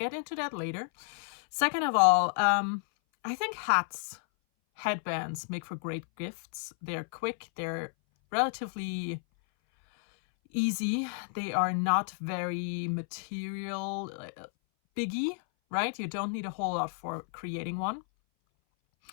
into that later. Second of all, I think headbands make for great gifts. They're quick, they're relatively easy. They are not very material biggie, right? You don't need a whole lot for creating one.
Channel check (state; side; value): silent; right; 57 dB below the other